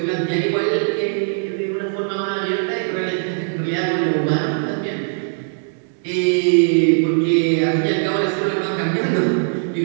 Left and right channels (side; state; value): left; silent; digital silence